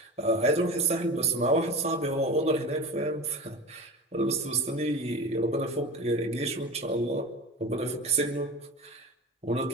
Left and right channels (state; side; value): normal; both; correlation 0.31